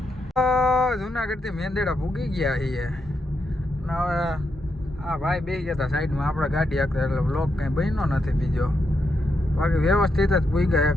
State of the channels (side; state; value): both; normal; correlation 0.82